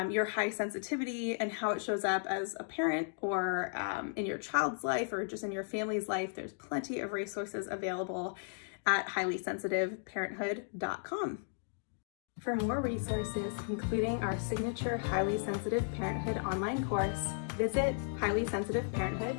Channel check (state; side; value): silent; right; digital silence